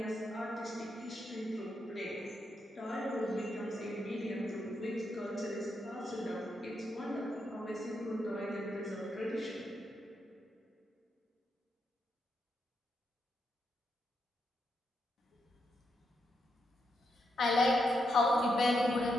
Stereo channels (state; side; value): normal; both; correlation 0.82